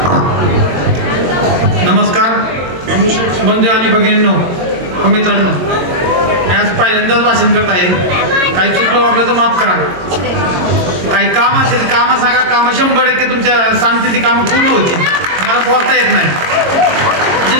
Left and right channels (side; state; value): left; late; 22 ms